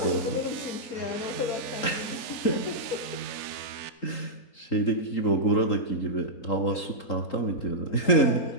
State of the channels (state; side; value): late; right; 3.8 ms